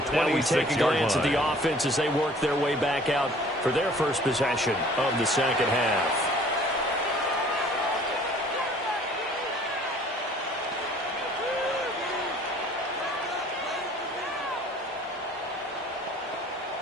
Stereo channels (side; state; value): both; normal; correlation 0.53